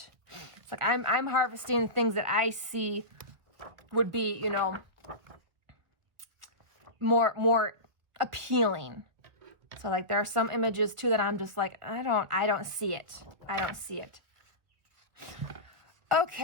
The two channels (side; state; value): left; late; 1.8 ms